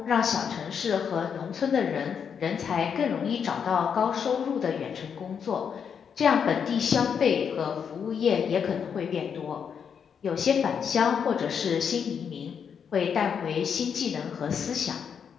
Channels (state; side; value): quieter; right; 7.1 dB